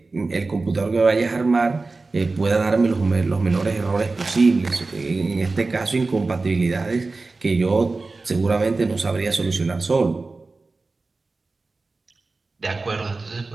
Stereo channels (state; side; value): quieter; left; 3.7 dB